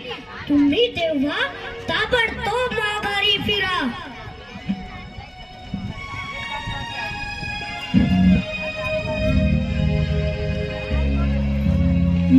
तुम्ही तेव्हा ताबडतोब माघारी फिरा.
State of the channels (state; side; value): identical; both; correlation 1.00